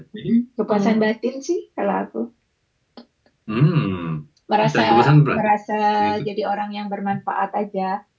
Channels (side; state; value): both; identical; correlation 1.00